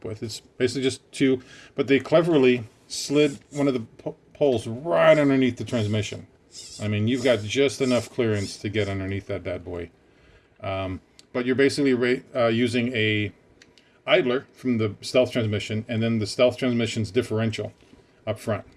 with. It's basically just two, but they cleverly slid one of the poles right underneath the transmission. I mean, you've got just enough clearance to get underneath that bad boy. But you're basically using a idler from the stealth transmission, and then the stealth transmission's differential up front.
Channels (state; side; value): identical; both; correlation 1.00